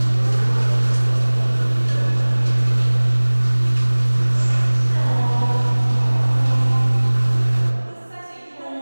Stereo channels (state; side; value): inverted; both; correlation -1.00